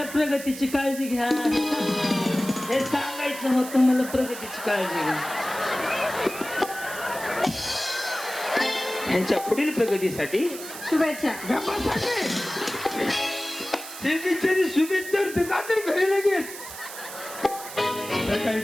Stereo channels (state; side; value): noise; right; hiss, 12 dB below the sound